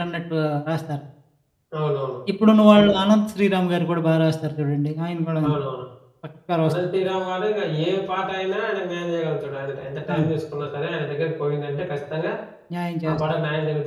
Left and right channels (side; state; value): both; identical; correlation 1.00